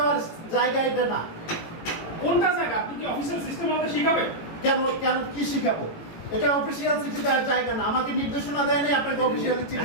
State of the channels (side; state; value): right; late; 18 ms